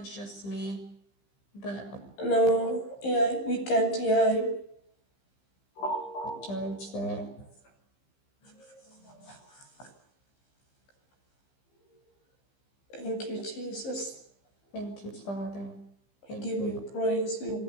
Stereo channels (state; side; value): late; right; 15 ms